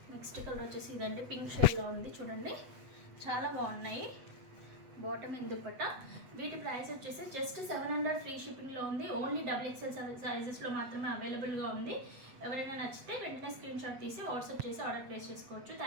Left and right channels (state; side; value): late; left; 8.1 ms